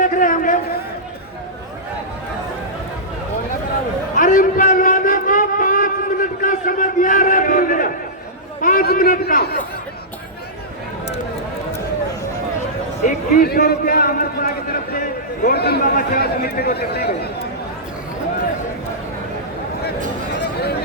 रहे होंगे। अरे इन पहलवानों को 5 मिनट का समय दिया रहा, 5 मिनट का 2100 रुपया अमरपुरा की तरफ से गोवर्धन बाबा सेवा समिति को देते हैं।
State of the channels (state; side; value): normal; both; correlation -0.15